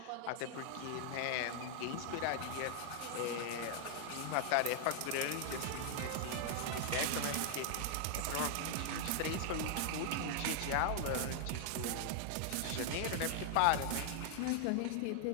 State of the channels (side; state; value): both; different; correlation 0.00